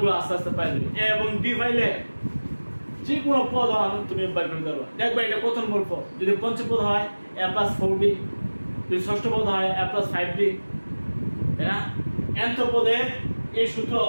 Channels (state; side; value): inverted; both; correlation -1.00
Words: আস্তে আস্তে পাই যাবে a এবং d পাইলে যে কোনো পদ তুমি বের করে দেবা দেখবা এটা প্রথম পদ যদি পঞ্চম পদ হয় a plus 4d যদি ষষ্ঠ পদ হয় a plus 5d তাই না nth পদে এই সূত্র